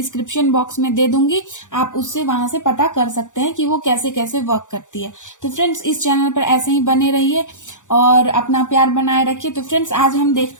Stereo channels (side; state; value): right; late; 0.86 ms